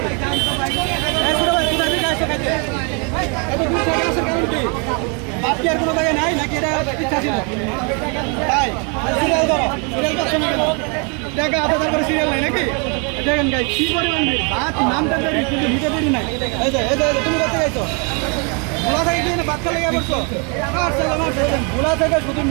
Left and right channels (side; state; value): left; quieter; 35.3 dB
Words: বাকি আর কোনো জায়গায় নাই নাকি এটা ইচ্ছা ছিল তাই সিরিয়াল ধরো সিরিয়াল করছো না কেন টাকা আধা করে সিরিয়াল নাই নাকি দেখেন গাই কি পরিমাণ ভাত নামটা দেরি কিন্তু নিতে দেরি নাই এই যে তুমি করতে যাইছো ভোলা থেকে কি ভাত খেলে গিয়ে বলছো ভোলা থেকে শুধু